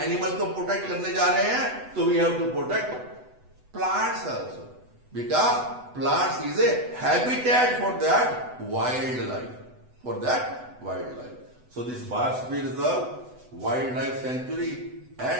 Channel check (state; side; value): late; left; 8.0 ms